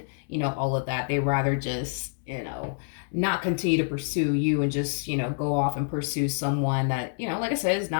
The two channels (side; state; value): right; silent; 60 dB below the other